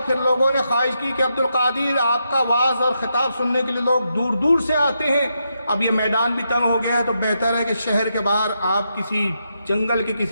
پھر لوگوں نے خواہش کی کہ عبدالقادر آپ کا وعظ اور خطاب سننے کے لیے لوگ دور دور سے آتے ہیں، اب یہ میدان بھی تنگ ہو گیا ہے، تو بہتر ہے کہ شہر کے باہر آپ کسی جنگل کے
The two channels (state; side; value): inverted; both; correlation -0.83